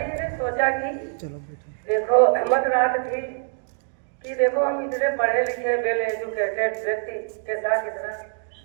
जी ने सोचा कि देखो हिम्मत रात थी कि देखो हम इतने पढ़े लिखे वेल एजुकेटेड व्यक्ति के साथ इतना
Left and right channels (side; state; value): left; silent; digital silence